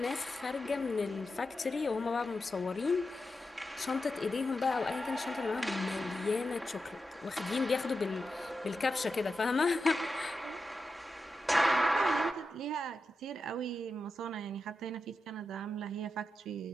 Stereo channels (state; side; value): normal; both; correlation 0.89